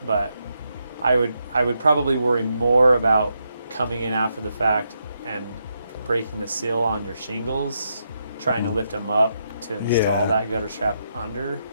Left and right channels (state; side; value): inverted; both; correlation -0.81